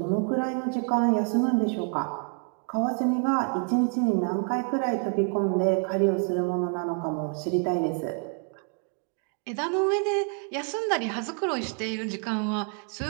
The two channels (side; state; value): left; quieter; 39.5 dB